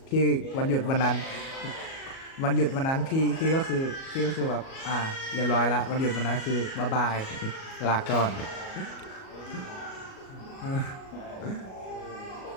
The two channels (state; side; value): late; right; 37 ms